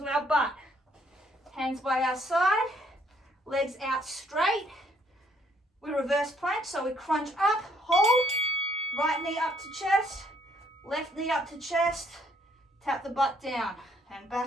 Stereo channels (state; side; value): normal; both; correlation 0.67